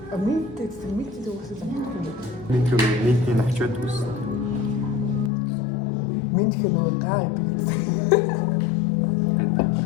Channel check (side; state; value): right; drops out; at 5.3 s